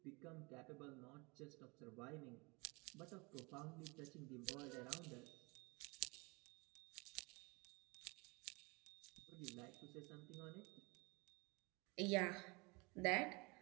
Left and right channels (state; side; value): quieter; left; 27.6 dB